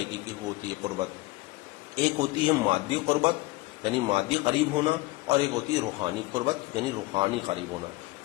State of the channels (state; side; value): quieter; right; 21.1 dB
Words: کی ہوتی ہے قربت. ایک ہوتی ہے مادی قربت یعنی مادی قریب ہونا، اور ایک ہوتی ہے روحانی قربت یعنی روحانی قریب ہونا،